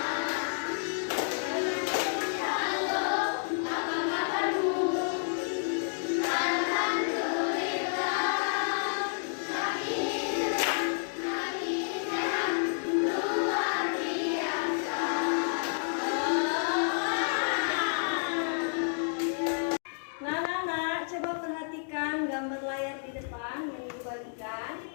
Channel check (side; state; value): right; silent; digital silence